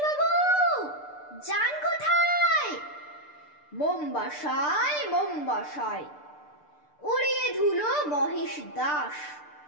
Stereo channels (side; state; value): right; late; 6.7 ms